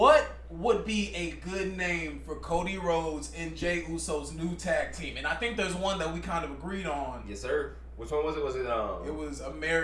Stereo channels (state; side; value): identical; both; correlation 1.00